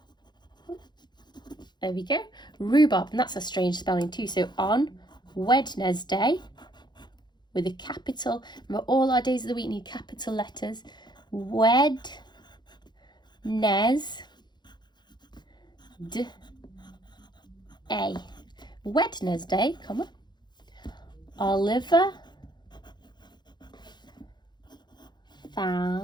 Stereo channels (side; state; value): right; late; 0.21 ms